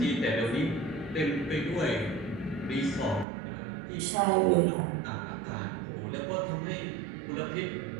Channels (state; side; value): drops out; left; at 3.2 s